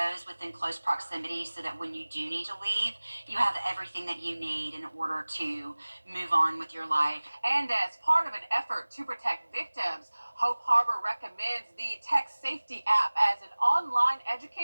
within close proximity so that when you do need to leave, you have everything that you need in order to move on with your life. And as part of an effort to protect victims, Hope Harbor recommends the Tech Safety app as an online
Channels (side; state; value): both; inverted; correlation -1.00